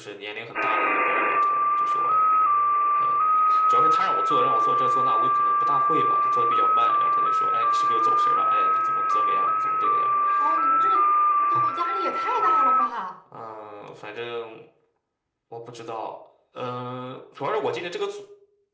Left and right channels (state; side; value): identical; both; correlation 1.00